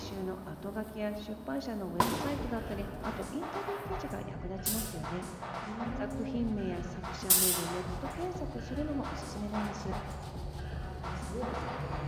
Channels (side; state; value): both; identical; correlation 1.00